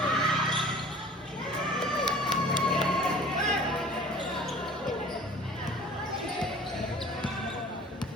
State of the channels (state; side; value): normal; both; correlation 0.46